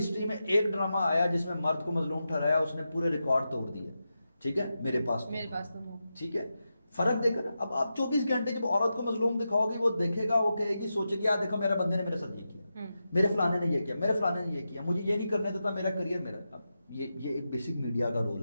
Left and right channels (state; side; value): inverted; both; correlation -0.90